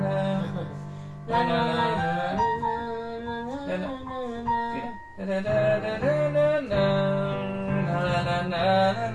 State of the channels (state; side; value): identical; both; correlation 1.00